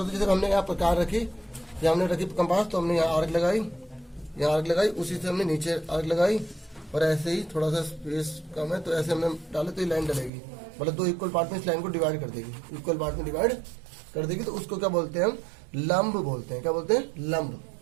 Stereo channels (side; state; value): left; drops out; at 10.3 s